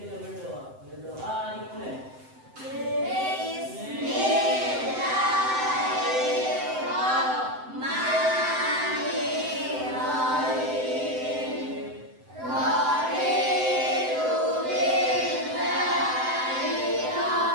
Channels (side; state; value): left; late; 7.8 ms